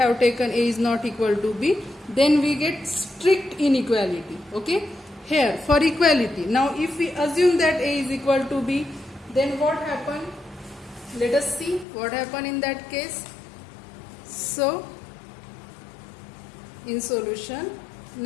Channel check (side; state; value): right; drops out; at 11.9 s